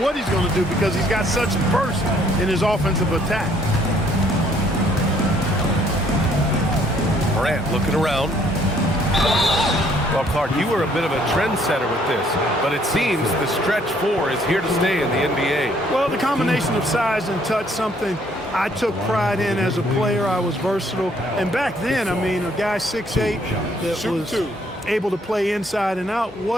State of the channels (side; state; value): both; normal; correlation 0.64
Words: he's going to do because he's got such burst in his offensive attack. Morant looking around. Well, Clark, you were a bit of a trendsetter with this, but it seems the stretch 4 is here to stay in the NBA. Well, the combination of size and touch, something I took pride in as a player. I was versatile. And back then, I mean, a guy 6'8" that was able to play inside and out